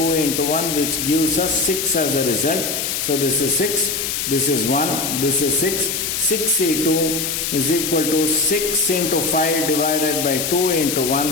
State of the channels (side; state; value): left; noise; hiss, 2 dB below the sound